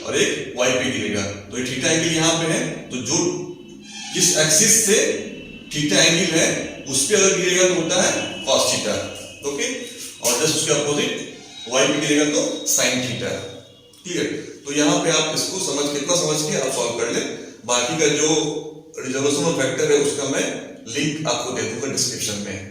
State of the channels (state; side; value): identical; both; correlation 1.00